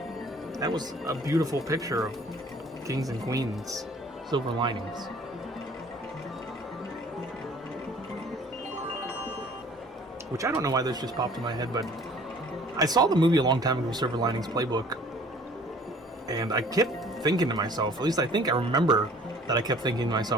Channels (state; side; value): normal; both; correlation 0.52